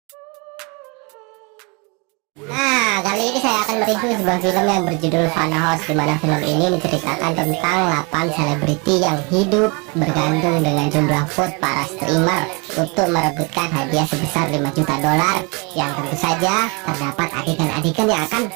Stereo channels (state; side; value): quieter; left; 30.8 dB